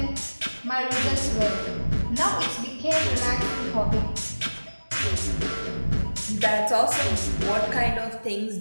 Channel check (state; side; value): inverted; both; correlation -1.00